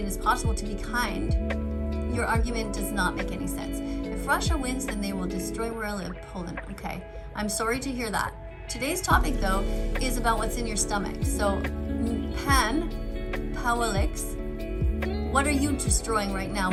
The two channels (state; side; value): identical; both; correlation 1.00